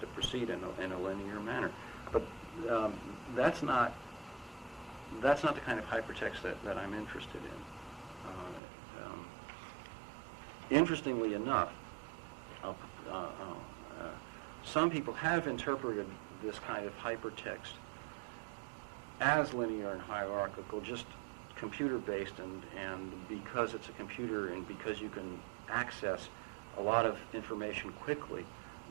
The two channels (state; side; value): drops out; left; at 8.6 s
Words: to proceed in a linear manner. But that's not the kind of hypertext that I'm interested in. Interestingly enough, some people have interpreted this kind of hypertext as linear and hierarchical, just computer-based, and because it's a computer and because you can access a lot of information quickly,